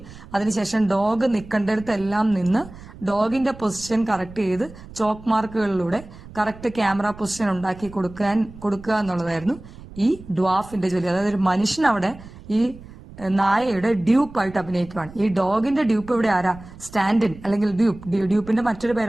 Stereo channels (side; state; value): right; noise; rumble, 18 dB below the sound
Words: അതിനുശേഷം ഡോഗ് നിൽക്കേണ്ടടുത്തെല്ലാം നിന്ന് ഡോഗിന്റെ പൊസിഷൻ കറക്റ്റ് ചെയ്ത് ചോക്ക് മാർക്കുകളിലൂടെ കറക്റ്റ് ക്യാമറ പൊസിഷൻ ഉണ്ടാക്കി കൊടുക്കുക എന്നുള്ളതായിരുന്നു ഈ ഡ്വാഫിന്റെ ജോലി. അതായത് ഒരു മനുഷ്യൻ അവിടെ ഈ നായയുടെ ഡ്യൂപ്പായിട്ട് അഭിനയിക്കുകയാണ്. ഈ ഡോഗിന്റെ ഡ്യൂപ്പ് ഇവിടെ ആരാ? സ്റ്റാൻഡിൻ അല്ലെങ്കിൽ ഡ്യൂപ്പിന്റെ മറ്റൊരു